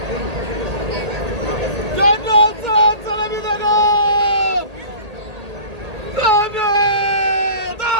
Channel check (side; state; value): left; late; 1.8 ms